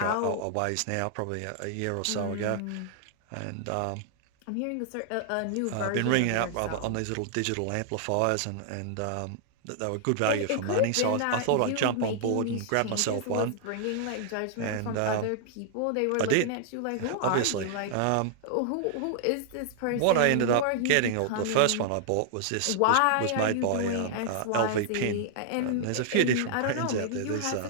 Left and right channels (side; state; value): both; different; correlation -0.01